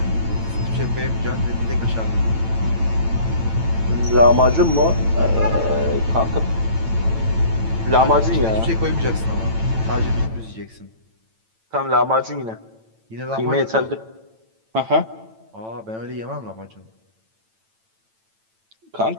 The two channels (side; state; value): left; late; 9.0 ms